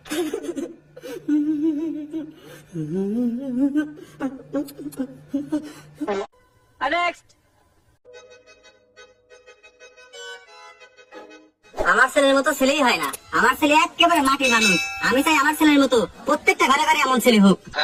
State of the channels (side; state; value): both; identical; correlation 1.00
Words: আমার ছেলের মতো ছেলেই হয় না, আমার ছেলে একেবারে মাটির মানুষ। আমি চাই আমার ছেলের মতো প্রত্যেকটা ঘরে ঘরে এমন ছেলে হোক।